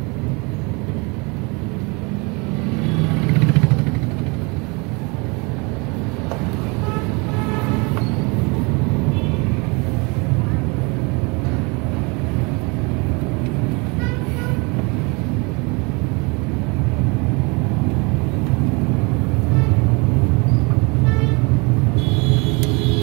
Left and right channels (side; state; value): left; quieter; 28.9 dB